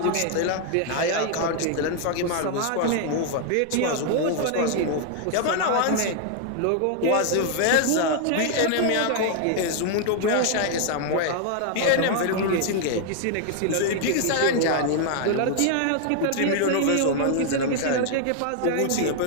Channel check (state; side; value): different; both; correlation 0.00